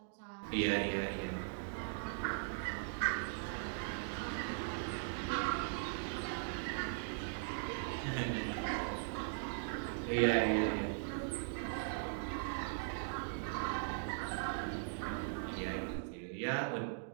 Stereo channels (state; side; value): silent; left; digital silence